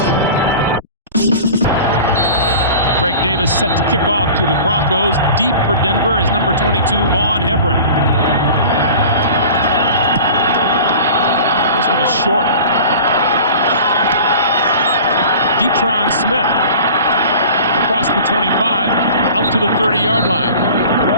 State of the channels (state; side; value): inverted; both; correlation -0.40